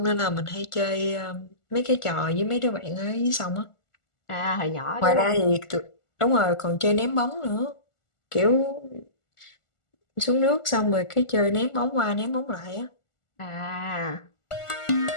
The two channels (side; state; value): right; late; 1.4 ms